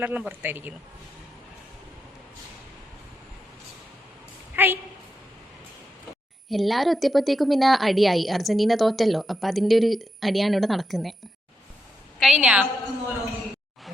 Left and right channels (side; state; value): both; normal; correlation 0.84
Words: പുറത്തായിരിക്കുന്നു. ഹായ്. എല്ലാവരും എത്തിയപ്പോഴത്തേക്കും പിന്നെ അടിയായി. അർജന്റീന തോറ്റല്ലോ. അപ്പം അതിൻ്റെ ഒരു അടിയാണ് ഇവിടെ നടക്കുന്നത്. കഴിഞ്ഞാ